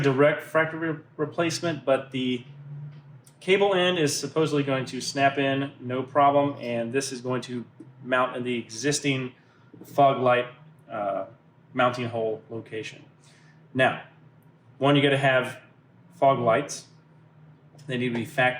direct factory replacement, but the cable end is supposedly going to snap in no problem, and this is going to mount in the existing fog light mounting hole location. Now, one, you got to have fog lights. They need to be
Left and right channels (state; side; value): identical; both; correlation 1.00